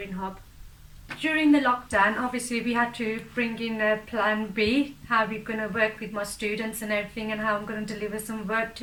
Hub. During the lockdown, obviously we had to bring in a plan B, how we're going to work with my students and everything, and how I'm going to deliver some work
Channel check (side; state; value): both; identical; correlation 1.00